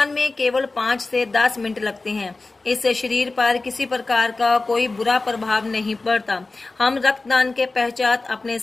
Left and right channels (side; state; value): right; quieter; 3.4 dB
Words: में केवल 5 से 10 मिनट लगते हैं। इससे शरीर पर किसी प्रकार का कोई बुरा प्रभाव नहीं पड़ता। हम रक्तदान के पश्चात अपने